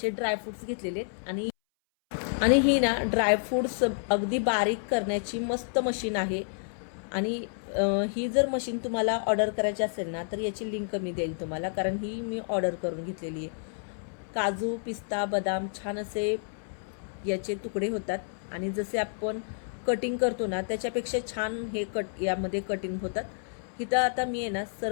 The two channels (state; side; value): silent; right; 58 dB below the other